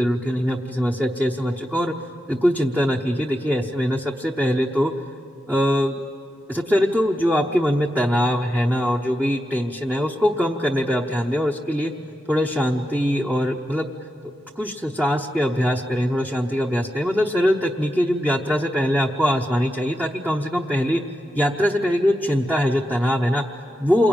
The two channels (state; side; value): normal; both; correlation 0.88